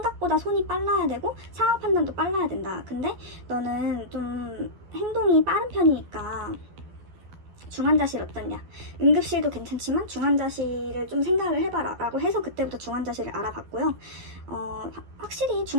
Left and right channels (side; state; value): left; late; 12 ms